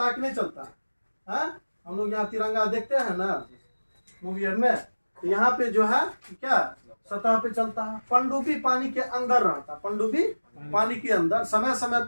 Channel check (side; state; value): both; inverted; correlation -1.00